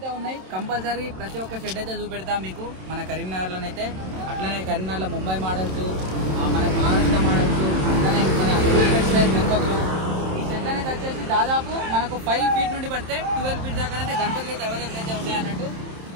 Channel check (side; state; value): left; late; 27 ms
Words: ఉన్నాయి. కంపల్సరీ ప్రతి ఒక్క షెడ్ అయితే చూపెడతాం మీకు మన కరీంనగర్లోనైతే. అట్లనే కరీంనగర్లో ముంబై మోడల్స్, మన మహారాష్ట్ర మోడల్స్, అట్లనే మన స్టైల్ గణపతులు. ఈ షెడ్ అనేది వచ్చేసి దాదాపు మనకు 5 feet నుండి పడితే 12 feet దాకా అయితే గణపతులు అయితే అవైలబుల్ అయితే ఉన్నాయి అన్నట్టు.